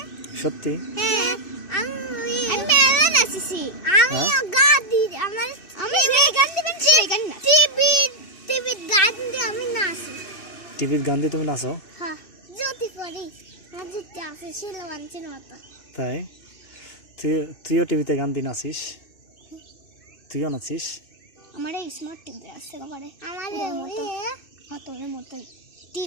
সত্যি? আমি মেলা নাচেছি। আমি গান দিই। আমি এই গান দিবেন, সেই গান না। টিভি গান দিয়ে আমি নাচি। টিভির গান দিয়ে তুমি নাচো? হ্যাঁ, যদি পড়ি যদি আছে শিলওয়ানচির মতো। তাই? তুইও টিভিতে গান দিয়ে নাচিস? তুইও নাচিস? আমার এই স্মার্ট টিভি আছে ঘরে। আমার তোর মতোই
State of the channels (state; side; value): late; right; 2.6 ms